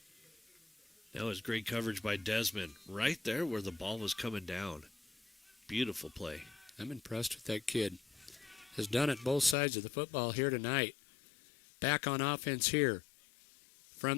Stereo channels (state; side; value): drops out; right; at 9.6 s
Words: That was great coverage by Desmond. Right there where the ball was coming down. Beautiful play. I'm impressed with that kid. Has done it both sides of the football here tonight. Back on offense here.